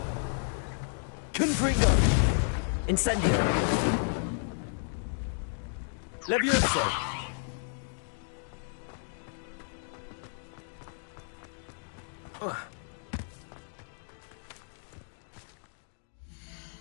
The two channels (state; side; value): silent; right; digital silence